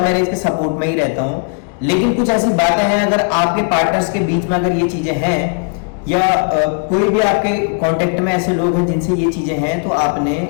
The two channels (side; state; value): right; quieter; 39.1 dB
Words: मैरिज के सपोर्ट में ही रहता हूं, लेकिन कुछ ऐसी बातें हैं अगर आपके पार्टनर्स के बीच में अगर ये चीजें हैं या कोई भी आपके कांटेक्ट में ऐसे लोग हैं जिनसे ये चीजें हैं, तो आपने